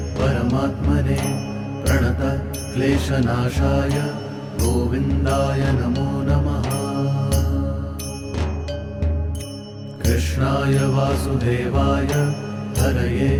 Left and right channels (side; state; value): both; identical; correlation 1.00